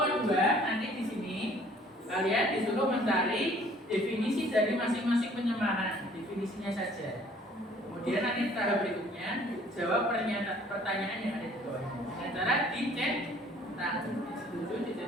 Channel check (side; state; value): both; normal; correlation 0.56